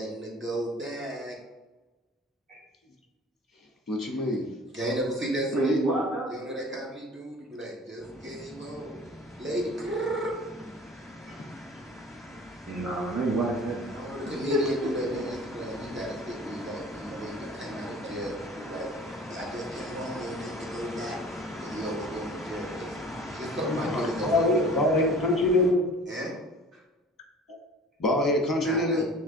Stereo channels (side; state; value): both; normal; correlation 0.44